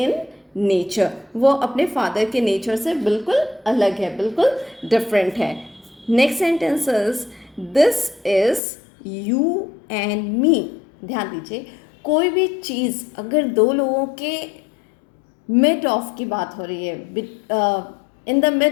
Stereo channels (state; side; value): drops out; right; at 8.6 s